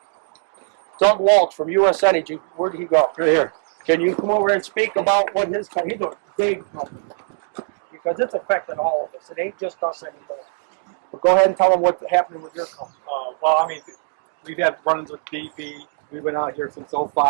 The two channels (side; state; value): left; silent; digital silence